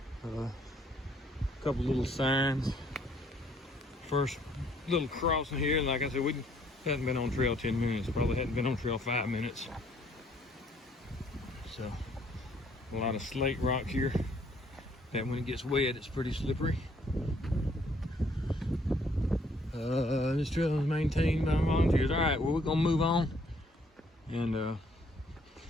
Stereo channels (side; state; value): both; normal; correlation 0.65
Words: A couple little signs. First little crossing here, and like I said, we hadn't been on trail 10 minutes. Probably hadn't been on trail 5 minutes. So a lot of slate rock here. That when it gets wet, it's pretty slippery. This trail is maintained by volunteers. All right, well, we're gonna move on and